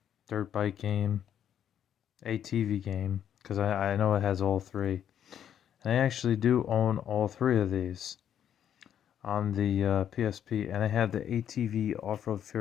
dirt bike game, ATV game, because I know it has all 3. And I actually do own all 3 of these on the PSP, and I have the ATV Off-Road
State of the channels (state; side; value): quieter; right; 9.6 dB